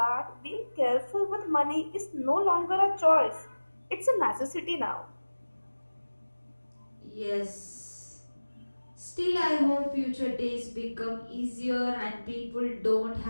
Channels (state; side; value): inverted; both; correlation -1.00